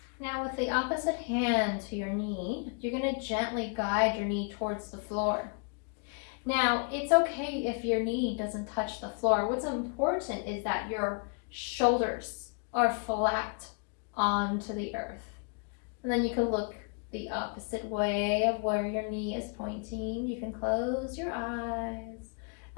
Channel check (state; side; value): quieter; right; 39.7 dB